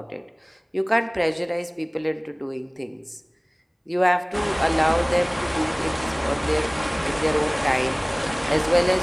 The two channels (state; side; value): identical; both; correlation 1.00